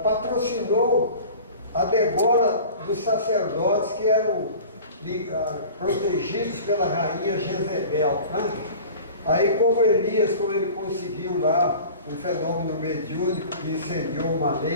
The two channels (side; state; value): both; inverted; correlation -0.40